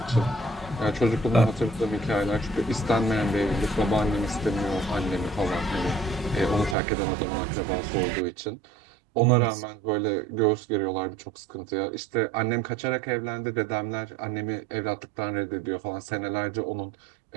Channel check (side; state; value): left; drops out; at 6.8 s